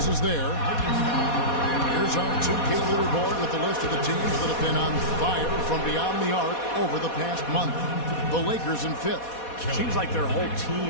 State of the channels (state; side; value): late; right; 4.2 ms